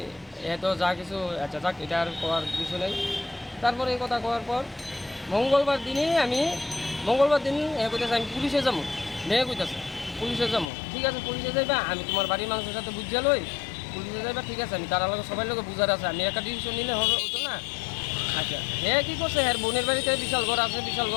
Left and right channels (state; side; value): drops out; right; at 10.7 s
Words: এত যা কিছু, আচ্ছা যাক, এটা আর করার কিছু নেই। তারপরে এই কথা করার পর মঙ্গলবার দিন কইতেছে আমি পুলিশে যাবো। মেয়ে কইতেছে পুলিশে যাবো। ঠিক আছে পুলিশে যাইবা, আমি তোমার বাড়ির মানুষের সাথে বুঝিয়া লই, পুলিশে যাইবা। ঠিক আছে আমি তার লোক সবাই লোক বুঝার আছে, আমি একটা ডিসিশন নিলে হতো না। আচ্ছা হ্যাঁ কী করছে, হ্যাঁ বোনের বাড়িতে বিশাল ঘর আছে, বিশাল